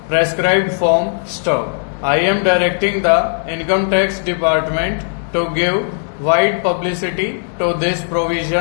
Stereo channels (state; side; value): silent; right; digital silence